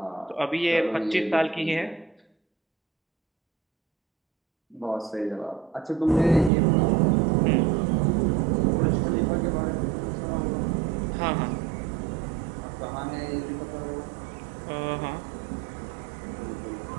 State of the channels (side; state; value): left; drops out; at 6.5 s